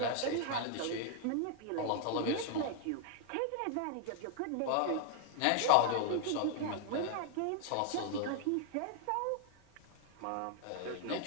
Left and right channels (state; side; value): different; both; correlation 0.00